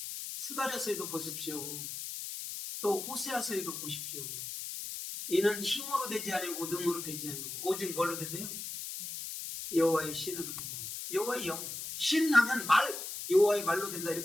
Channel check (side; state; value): left; noise; hiss, 7 dB below the sound